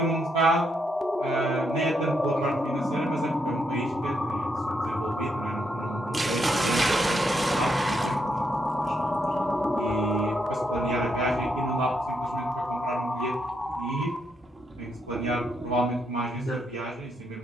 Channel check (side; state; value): both; normal; correlation 0.78